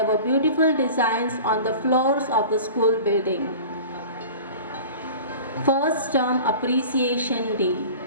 were beautiful designs on the floors of the school building. First Term Appreciation Day.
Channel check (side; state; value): both; inverted; correlation -0.39